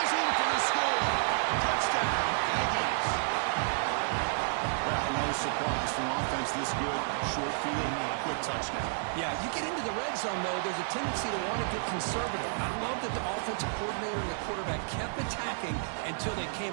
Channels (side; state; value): left; silent; digital silence